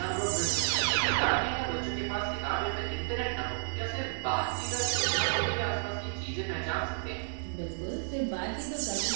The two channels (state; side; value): silent; left; digital silence